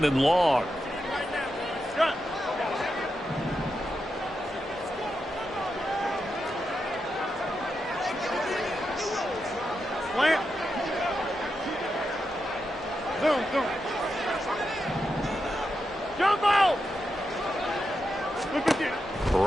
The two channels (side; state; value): both; normal; correlation 0.87